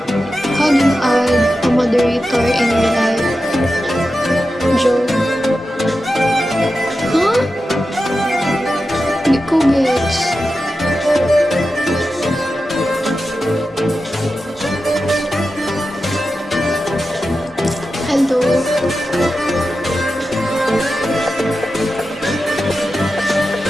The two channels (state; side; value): normal; both; correlation 0.92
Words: How do you add a moderator in your life? Joe. Huh? Hindi ko gets. Hello.